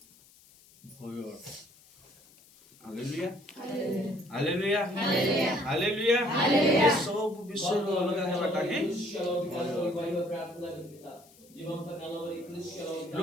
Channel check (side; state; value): left; noise; hiss, 26 dB below the sound